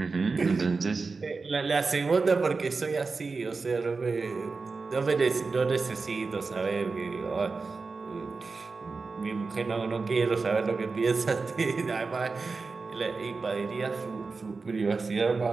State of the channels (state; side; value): quieter; left; 4.3 dB